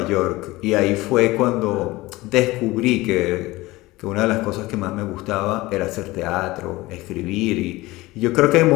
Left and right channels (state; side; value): quieter; right; 19.8 dB